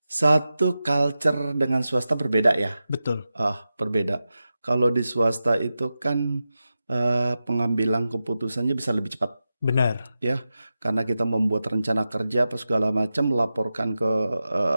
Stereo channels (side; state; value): both; inverted; correlation -0.92